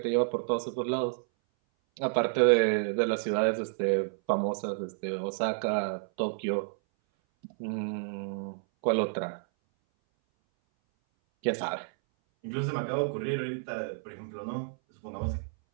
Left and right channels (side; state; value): left; silent; 58 dB below the other